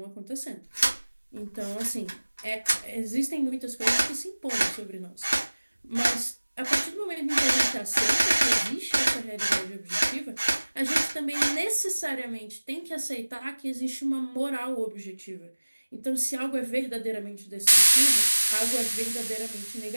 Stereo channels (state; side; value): inverted; both; correlation -1.00